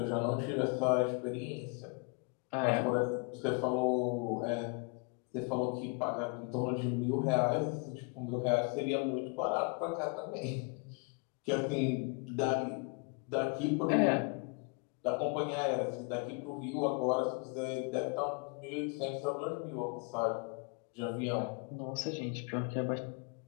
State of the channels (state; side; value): quieter; right; 34.5 dB